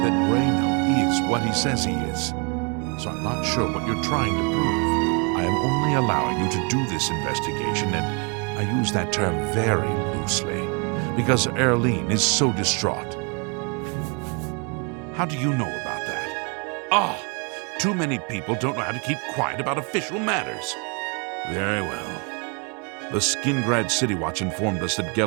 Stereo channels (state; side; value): quieter; left; 34.5 dB